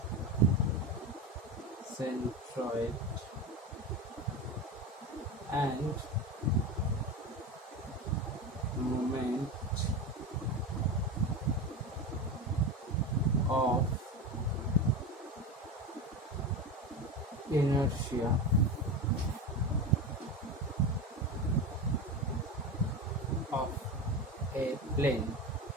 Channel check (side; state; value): both; normal; correlation 0.23